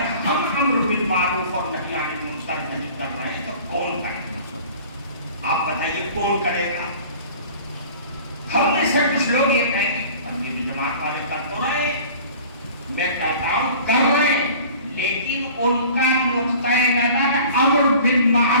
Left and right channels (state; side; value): inverted; both; correlation -0.45